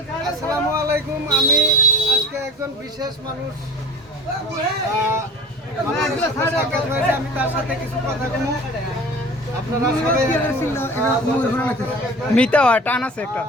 আসসালামু আলাইকুম। আমি আজকে একজন বিশেষ মানুষ সাক্ষাৎ হয়েছে, আমি তার সাথে কিছু কথা বলবো। আপনারা সবাই মিতা টান আছে একটা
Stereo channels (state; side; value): normal; both; correlation 0.40